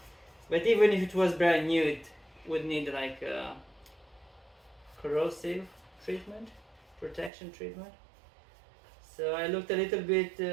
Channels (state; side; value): drops out; left; at 7.3 s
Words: But even if it was brand new, it would need like a corrosive treatment, protection treatment. So I looked a little bit